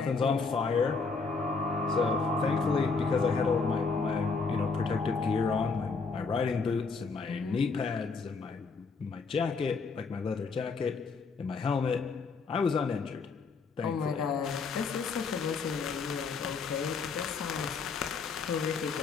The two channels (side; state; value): right; quieter; 4.6 dB